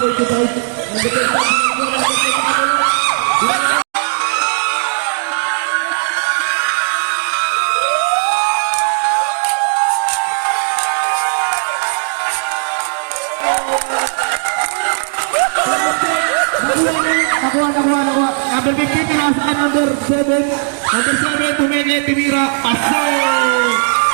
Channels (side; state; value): left; silent; 69 dB below the other